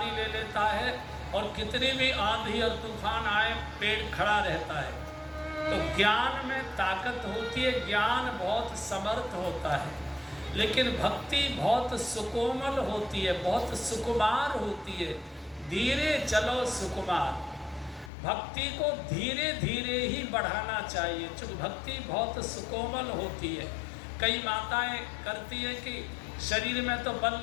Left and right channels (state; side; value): drops out; right; at 18.1 s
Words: ले लेता है, और कितनी भी आंधी और तूफान आए पेड़ खड़ा रहता है। तो ज्ञान में ताकत होती है, ज्ञान बहुत समर्थ होता है, लेकिन भक्ति बहुत सुकोमल होती है, बहुत सुकुमार होती है। धीरे चलो सुकुमार, भक्ति को धीरे धीरे ही बढ़ाना चाहिए, क्योंकि भक्ति बहुत सुकोमल होती है। कई माताएं करती हैं कि शरीर में तो बल